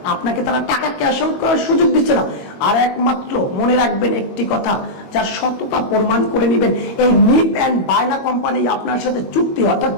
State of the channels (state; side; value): late; right; 21 ms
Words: আপনাকে তারা টাকা ক্যাশ আউট করার সুযোগ দিচ্ছে না। আর একমাত্র মনে রাখবেন একটি কথা, যার সততা প্রমাণ করে নেবেন, এই নিপ অ্যান্ড বায়না কোম্পানি আপনার সাথে চুক্তি, অর্থাৎ